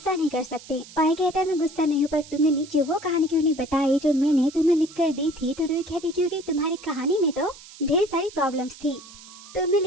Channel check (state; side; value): noise; right; hiss, 19 dB below the sound